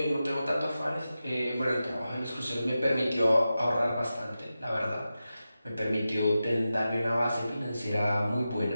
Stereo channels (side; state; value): both; inverted; correlation -0.92